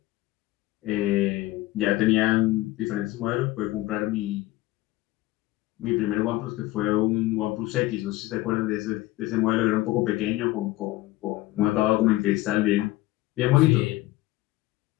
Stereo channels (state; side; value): quieter; right; 17.9 dB